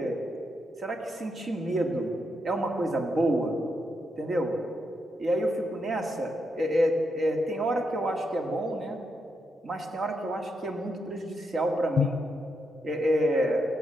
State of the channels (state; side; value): normal; both; correlation 0.82